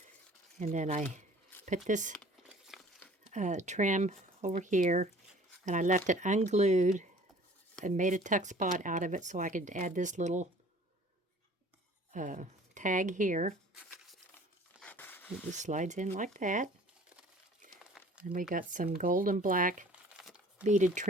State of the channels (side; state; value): both; normal; correlation 0.50